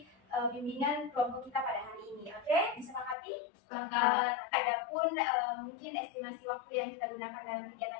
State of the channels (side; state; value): right; drops out; at 3.2 s